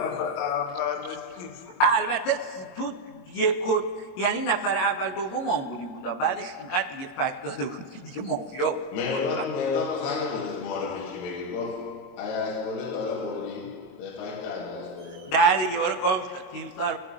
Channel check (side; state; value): right; late; 22 ms